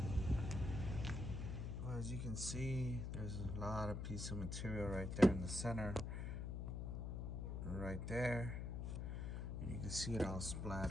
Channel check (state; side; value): noise; left; hum, 3 dB below the sound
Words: Well, as you can see, there's a lot of piece of material right there in the center. Right there. And you can see it all